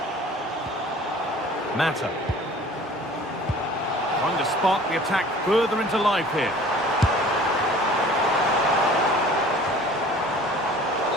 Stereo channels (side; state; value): both; normal; correlation 0.47